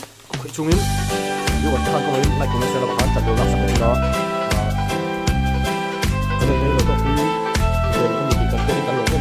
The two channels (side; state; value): both; identical; correlation 1.00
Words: chung in yêu vật thằng con lại cũng sẽ là bạn chặt được gặp sản đó cho nên đây là có cái về cái gì cần cái cán lộ cái